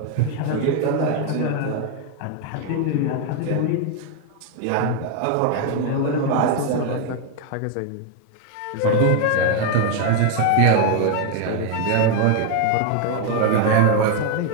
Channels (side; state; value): both; different; correlation 0.01